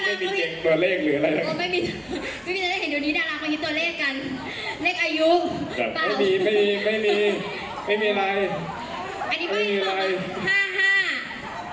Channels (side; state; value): both; identical; correlation 1.00